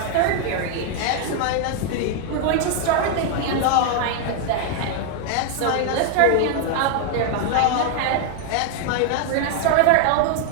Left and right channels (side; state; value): both; different; correlation 0.00